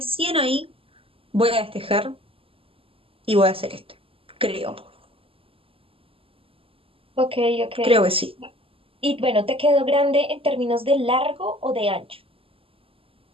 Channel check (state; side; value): late; left; 0.26 ms